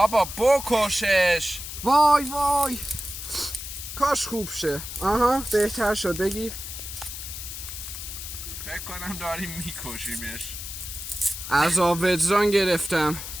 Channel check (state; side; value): noise; left; hiss, 9 dB below the sound